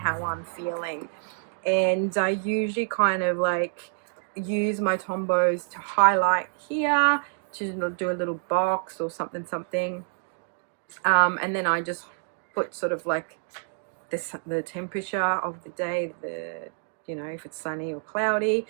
I'm feeling. And I usually kind of like use my Tombows to highlight here, to do a little box or something. And then I just put sort of like the temperature of the day, you know, if it's sunny or cloudy.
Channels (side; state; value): left; silent; digital silence